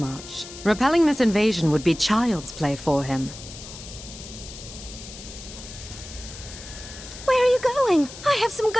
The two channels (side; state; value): left; noise; hiss, 14 dB below the sound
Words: Repelling this invasion would be child's play for him. Where are you going? I have some